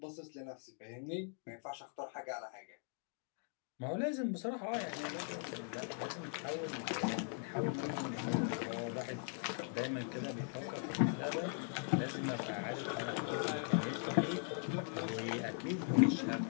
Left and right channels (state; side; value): silent; right; 51 dB below the other